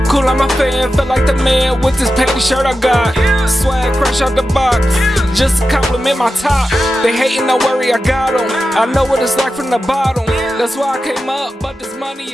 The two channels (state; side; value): normal; both; correlation 0.91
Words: Cool, I'm a fan, feel like the man with this petty shirt I got. Swag fresh out the box, just to compliment my top. They hating, don't worry, I got them. I know what it's like from the bottom. That's why I came up, but this